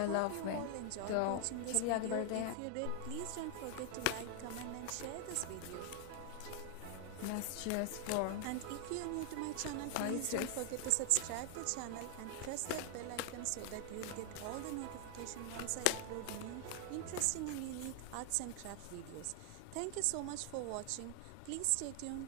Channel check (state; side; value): different; both; correlation 0.00